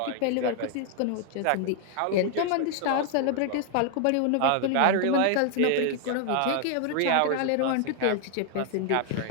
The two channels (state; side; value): different; both; correlation 0.00